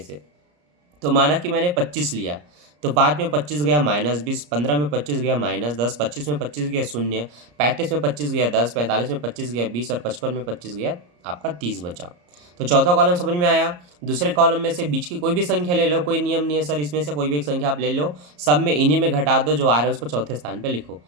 तो माना कि मैंने 25 लिया, तो 5 में 25 गया -20, 15 में 25 गया -10, 25 में 25 गया 0, 35 में 25 गया 10, 45 में 25 गया 20 और 55 में 25 गया आपका 30 बचा। तो चौथा कॉलम समझ में आया। दूसरे कॉलम में से बीच की कोई भी संख्या ले लो, कोई नियम नहीं है सर, इसमें से कोई भी एक संख्या आप ले लो, सब में इन्हीं में घटा दो, जो आ रहा है उसको चौथे स्थान पर लिखो।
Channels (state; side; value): late; left; 34 ms